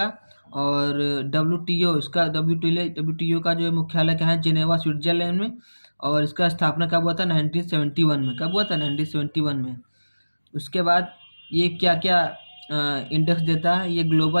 और WTO का जो मुख्यालय कहाँ है, जेनेवा स्विट्जरलैंड में। और इसका स्थापना कब हुआ था, 1971 में। कब हुआ था, 1971 में। उसके बाद ये क्या क्या इंडेक्स देता है, ये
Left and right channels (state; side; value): inverted; both; correlation -1.00